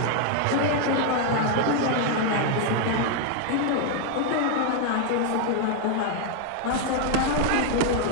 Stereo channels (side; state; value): both; different; correlation 0.00